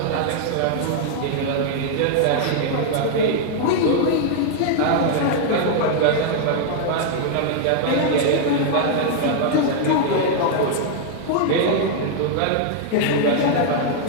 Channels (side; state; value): both; different; correlation -0.01